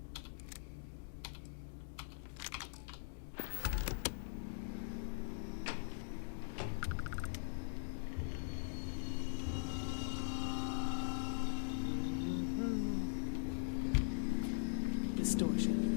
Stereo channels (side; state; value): right; silent; digital silence